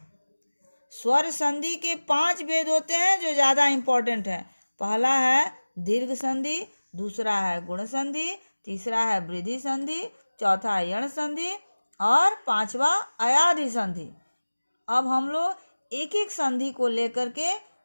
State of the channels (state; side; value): inverted; both; correlation -1.00